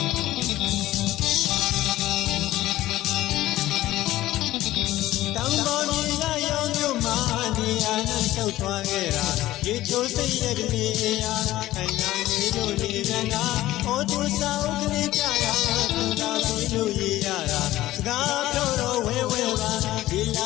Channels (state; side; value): quieter; right; 15.6 dB